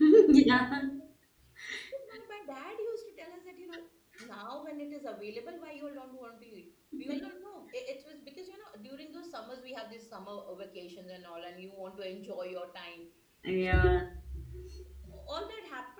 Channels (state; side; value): identical; both; correlation 1.00